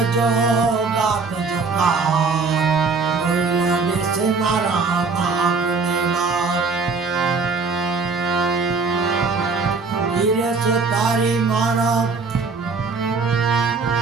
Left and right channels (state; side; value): quieter; left; 4.5 dB